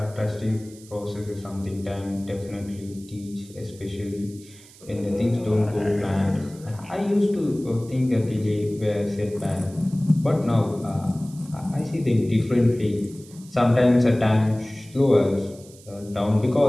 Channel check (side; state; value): right; noise; hiss, 22 dB below the sound